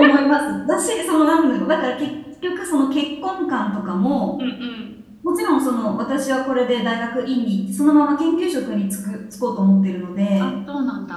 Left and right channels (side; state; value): both; identical; correlation 1.00